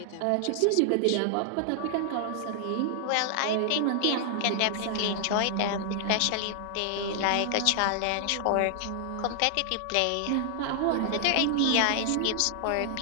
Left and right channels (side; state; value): both; different; correlation 0.00